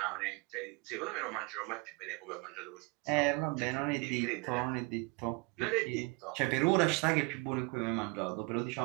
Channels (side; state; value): left; quieter; 28.9 dB